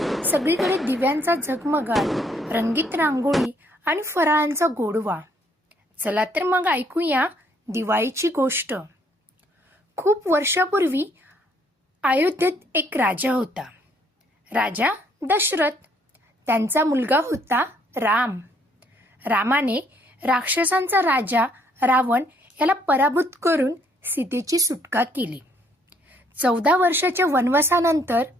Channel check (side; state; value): both; normal; correlation 0.67